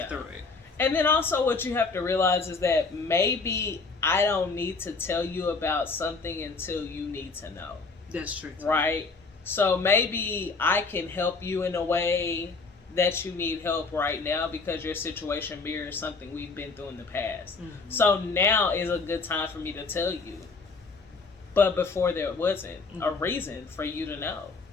through it. And then also what you have to realize is that maybe I don't need to tell you about something until you need to know. That's true. Right? So maybe I can help you in a way that you need help right now because your situation mirrors something we've been through in the past. Mm-hmm. So now is a good time for me to tell you. But before there wasn't a reason for you to know.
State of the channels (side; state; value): right; quieter; 4.2 dB